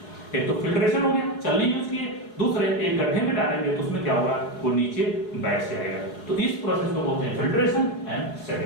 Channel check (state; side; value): late; right; 4.7 ms